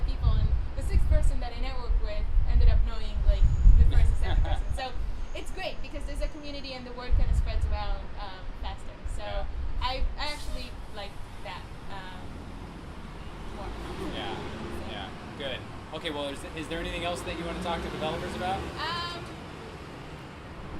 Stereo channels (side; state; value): both; identical; correlation 1.00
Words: people, and the 6th person that I networked with ended up knowing like the first and 7th person. So it's great because there's a community and the word kind of spreads around faster. So I actually like that more. Yeah. Good. Okay. Well, is there anything else that you want to talk to developers about?